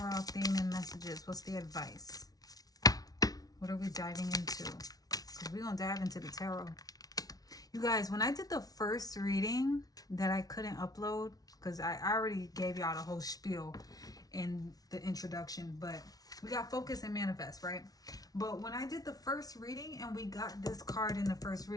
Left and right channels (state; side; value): late; right; 0.18 ms